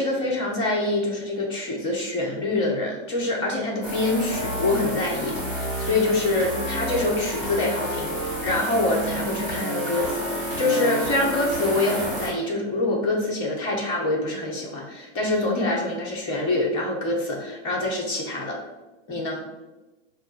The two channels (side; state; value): right; late; 2.5 ms